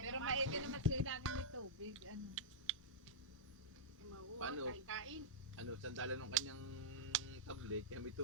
Pero maigi naman sila lagi may tubig. Ano. Paano? Kain-kain. Ano, sandalan ng kanyang tablet, kaya may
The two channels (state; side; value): normal; both; correlation -0.12